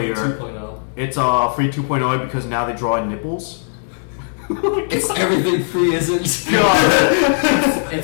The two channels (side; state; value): right; silent; 66 dB below the other